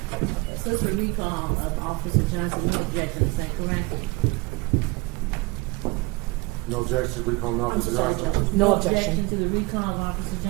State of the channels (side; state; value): left; quieter; 24.5 dB